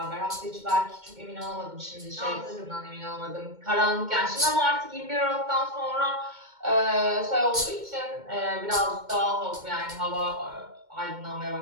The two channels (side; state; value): left; late; 2.2 ms